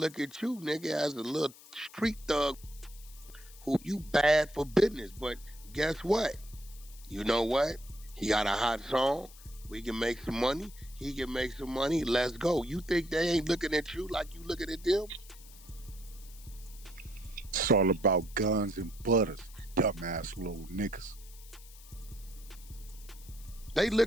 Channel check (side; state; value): left; noise; hiss, 20 dB below the sound